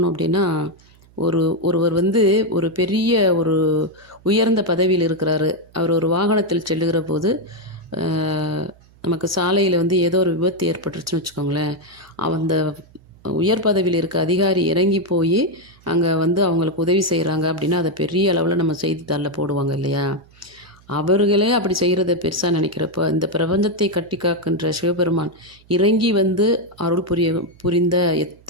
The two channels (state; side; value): noise; right; hum, 28 dB below the sound